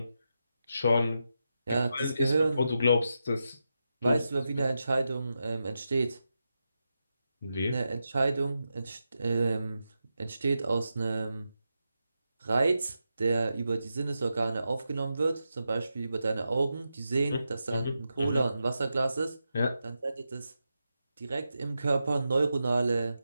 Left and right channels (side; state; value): both; inverted; correlation -0.88